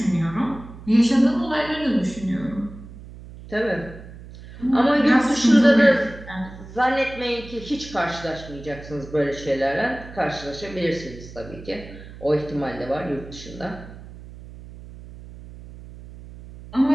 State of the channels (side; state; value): right; noise; hum, 16 dB below the sound